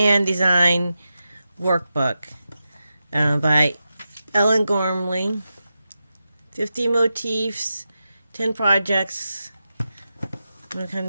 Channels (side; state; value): both; inverted; correlation -0.90